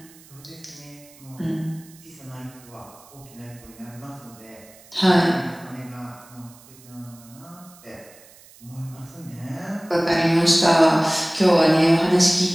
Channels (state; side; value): noise; right; hiss, 24 dB below the sound